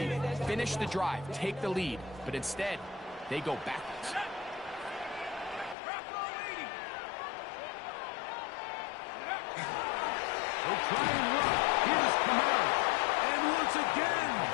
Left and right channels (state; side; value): drops out; right; at 5.8 s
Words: Finish the drive, take the lead, but instead, they go backwards. They try and run. Here's Kamara. And once again,